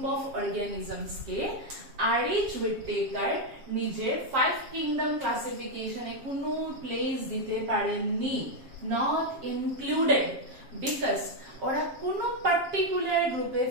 of organisms K RH whittaker নিজের 5 কিংডম ক্লাসিফিকেশনে কোনো প্লেস দিতে পারেননি, নট ইনক্লুডেড, বিকজ ওরা কোনো পার্টিকুলার গ্রুপে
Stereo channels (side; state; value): left; late; 7.4 ms